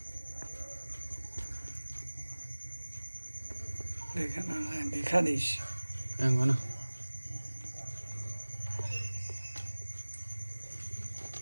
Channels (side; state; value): both; inverted; correlation -1.00